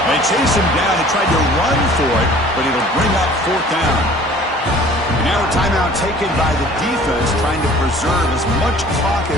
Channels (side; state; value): both; normal; correlation 0.49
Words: They chase him down. They tried to run for it, but it'll bring up fourth down. And now a timeout taken by the defense, trying to preserve as much clock